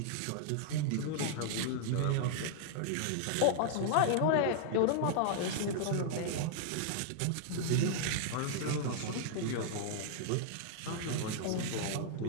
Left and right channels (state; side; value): different; both; correlation -0.01